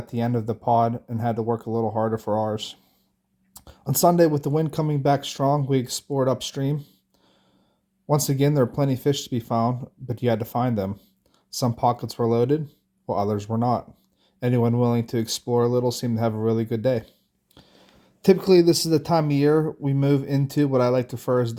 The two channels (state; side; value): identical; both; correlation 1.00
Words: the end of the pod and had to work a little harder for ours. On Sunday, with the wind coming back strong, we explored upstream. Once again, there were plenty of fish to be found, but you had to find them. Some pockets were loaded, while others were not. Anyone willing to explore a little seemed to have a really good day. Typically, this is the time of year we move into what I like to refer as